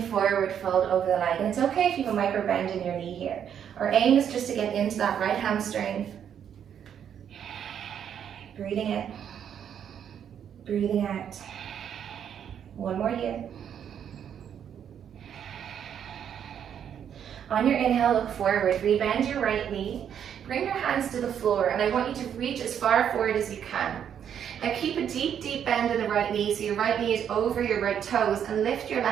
forward, fold over the leg. And it's okay if you have a micro bend in your knee here. Our aim is just to get into that right hamstring. Breathing in. Breathing out. One more here. On your inhale, look forward. Rebend your right knee. Bring your hands to the floor, and I want you to reach as far forward as you can. Now keep a deep, deep bend in the right knee, so your right knee is over your right toes, and lift your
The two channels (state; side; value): quieter; left; 8.8 dB